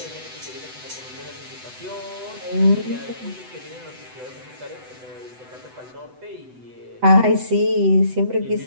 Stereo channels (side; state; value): left; late; 8.0 ms